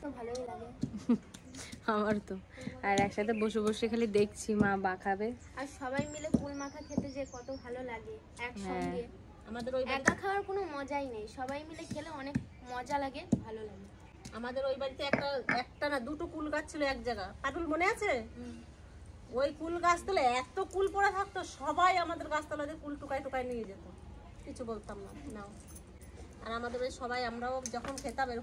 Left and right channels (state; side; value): identical; both; correlation 1.00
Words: তো ভালোই লাগে। আমার তো। আর একসাথে বসে বসে খালি দেখছি মা মাখাবে। আর সবাই মিলে কুল মাখা খেতে যে কত ভালো লাগে একসঙ্গে। আমাদের ওই একা খাওয়ার কোনো মজাই নেই, সবাই মিলে খেলে অনেক মজা লাগে, ভালো লাগে। আমাদের ওই বাড়িতে একটা না দুটো কুল গাছ ছিল এক জায়গা, পাটুল মনে আছে? ওই কুল গাছতলে এত কুল পড়ে থাকতো, সবাই আমাদের গাছতলাতে কুল টুকাই টুকাই নিয়ে যেত, কিছু বলতাম না। নাও। আর আমাদের ওই সবাই, আমরাও যখন খেতাম